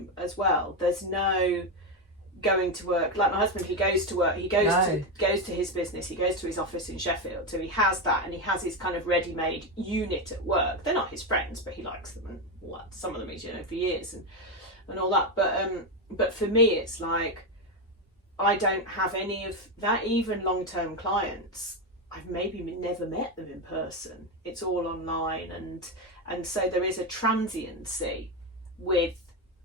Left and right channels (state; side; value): normal; both; correlation 0.10